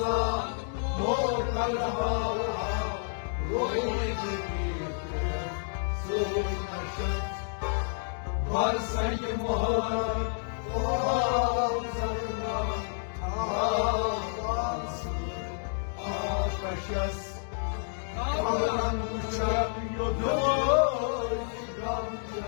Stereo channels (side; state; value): right; silent; digital silence